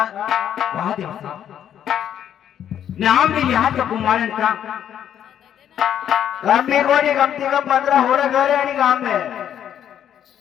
वहां देव साहब नाम भी यहाँ तो कुमारन का काम भी कोई कम से कम 15 हो रहा घर है नहीं काम में।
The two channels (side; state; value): right; quieter; 9.9 dB